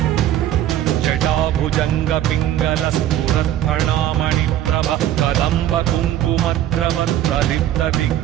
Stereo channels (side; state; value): left; quieter; 12.1 dB